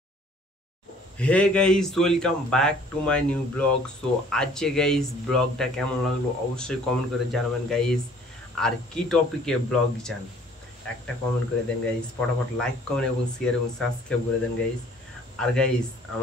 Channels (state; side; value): normal; both; correlation 0.55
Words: Hey guys, welcome back to my new blog. So আজকে গাইস ব্লগটা কেমন লাগলো অবশ্যই কমেন্ট করে জানাবেন গাইস। আর কি টপিকে ব্লগ চান একটা কমেন্ট করে দেন গাইস, ফটাফট লাইক কমেন্ট এবং শেয়ার এবং সাবস্ক্রাইব করে দেন গাইস। আর গাইস